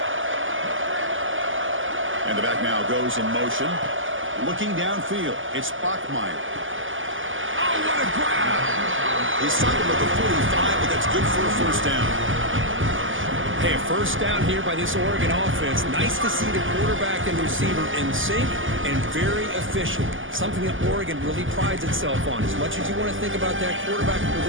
And the back now goes in motion. Looking downfield, it's Bachmeier. Oh, what a grab! He's something with the 45, but that's good for a first down. Hey, a first down here by this Oregon offense. Nice to see the quarterback and receiver in sync and very efficient. Something that Oregon really prides itself on. As much as you want to think about that quarterback with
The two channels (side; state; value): left; late; 0.58 ms